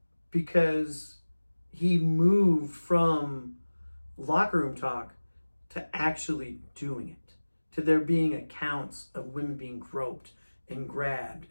because he moved from locker room talk to actually doing it, to there being accounts of women being groped and grabbed.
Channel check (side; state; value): both; inverted; correlation -1.00